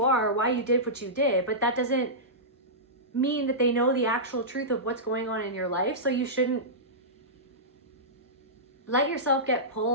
are, why you did what you did, but that doesn't mean that they know the actual truth of what's going on in your life. So you shouldn't let yourself get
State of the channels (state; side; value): normal; both; correlation -0.16